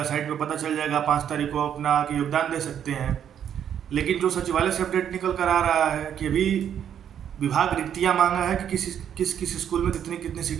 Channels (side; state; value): left; quieter; 9.2 dB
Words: साइट पे पता चल जाएगा, 5 तारीख को अपना आके योगदान दे सकते हैं। लेकिन जो सचिवालय से अपडेट निकल कर आ रहा है कि अभी विभाग रिक्तियाँ मांगा है कि किस स्कूल में कितनी कितनी